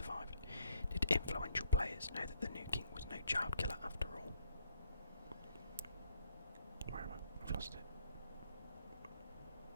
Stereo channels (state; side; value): inverted; both; correlation -0.71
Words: Did influential players know that the new king was no child killer after all? Where am I? I've lost it.